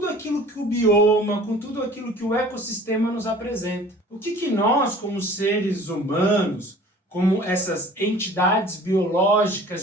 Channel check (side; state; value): both; normal; correlation 0.47